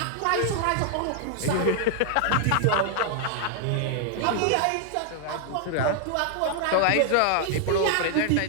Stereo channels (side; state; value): both; different; correlation 0.00